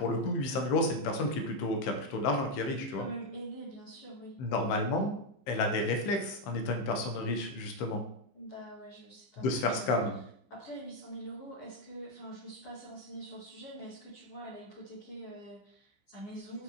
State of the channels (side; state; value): right; late; 15 ms